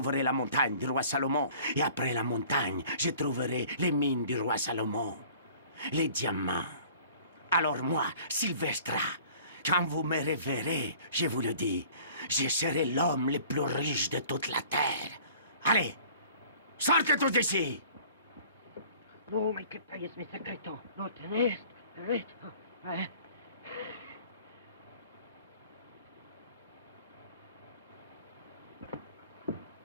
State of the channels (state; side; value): inverted; both; correlation -0.49